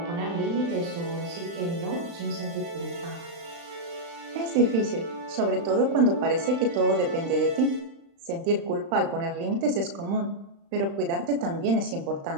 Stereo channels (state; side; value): late; left; 35 ms